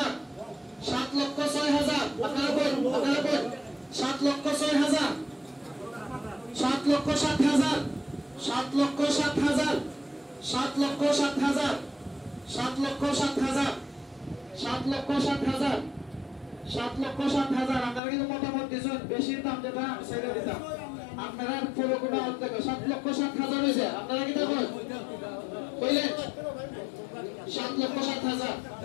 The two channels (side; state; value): right; drops out; at 18.0 s